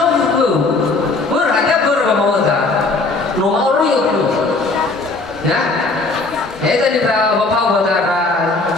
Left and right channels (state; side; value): quieter; right; 3.5 dB